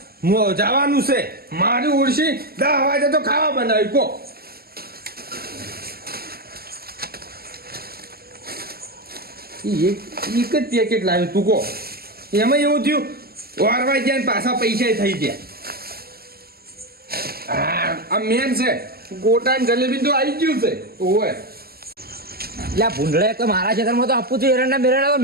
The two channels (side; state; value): left; late; 0.45 ms